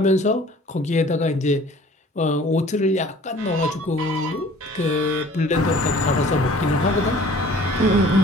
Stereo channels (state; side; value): normal; both; correlation 0.50